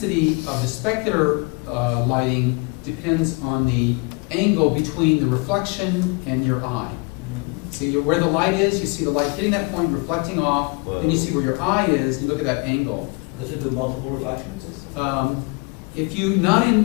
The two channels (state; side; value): quieter; right; 30.6 dB